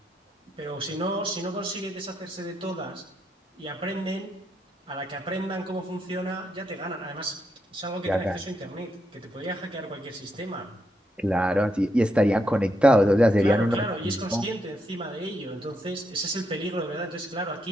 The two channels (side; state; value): both; normal; correlation 0.81